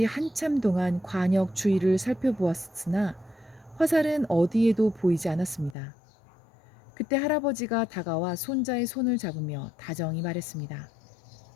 한참 동안 관역 주위를 살펴보았으나 화살은 어디에도 보이지 않았습니다. 그때 할아버지가 다가와 손자의 손을 잡으며 다정히 말했습니다.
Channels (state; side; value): drops out; right; at 5.8 s